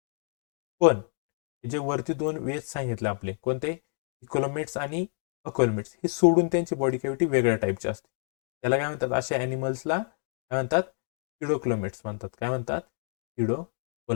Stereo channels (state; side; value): silent; right; 57 dB below the other